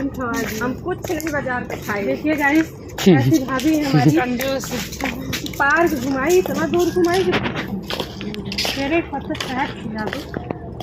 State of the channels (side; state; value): both; identical; correlation 1.00